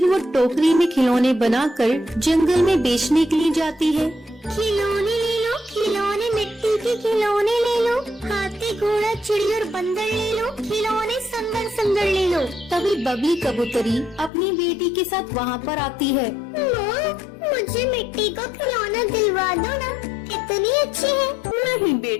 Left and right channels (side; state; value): right; drops out; at 14.3 s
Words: वो टोकरी में खिलौने बनाकर जंगल में बेचने के लिए जाती है। खिलौने ले लो, खिलौने मिट्टी के खिलौने ले लो, हाथी घोड़ा चिड़ी और बंदर ले लो, खिलौने सुंदर सुंदर ले लो। तभी बबली कबूतरी अपनी बेटी के साथ वहाँ पर आती है। माँ, मुझे मिट्टी का खिलौना दिलवा दो ना, कितनी अच्छी है। नहीं